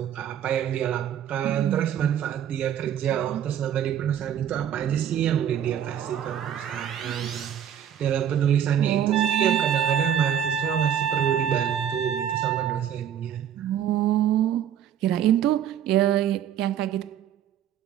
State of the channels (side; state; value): left; quieter; 9.6 dB